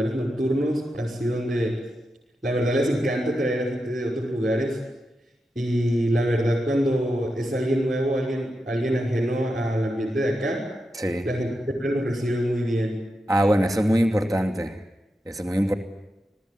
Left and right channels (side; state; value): both; normal; correlation 0.88